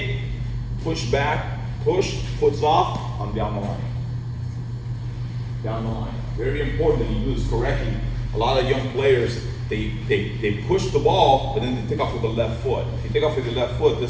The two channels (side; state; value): both; identical; correlation 1.00